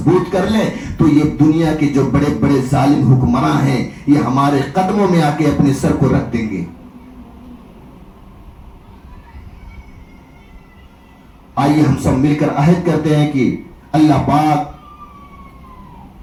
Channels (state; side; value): identical; both; correlation 1.00